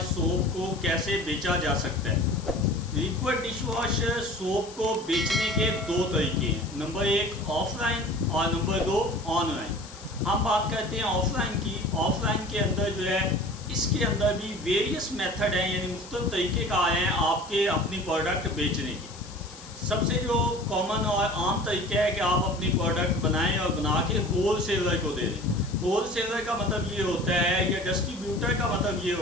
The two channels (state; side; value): noise; left; hiss, 18 dB below the sound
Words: सोप को कैसे बेचा जा सकता है। लिक्विड डिशवॉश सोप को बेचने के दो तरीके हैं, नंबर एक ऑफलाइन और नंबर दो ऑनलाइन। हम बात करते हैं ऑफलाइन की। ऑफलाइन के अंदर जो है इसके अंदर भी वेरियस मेथड हैं, यानी मुख्तलिफ तरीके का आए हैं आपके अपनी प्रोडक्ट बेचने की। सबसे जो कॉमन और आम तरीका है कि आप अपनी प्रोडक्ट बनाएं और बना के होल सेलर को दे दें। होल सेलर का मतलब ये होता है, या डिस्ट्रीब्यूटर का मतलब ये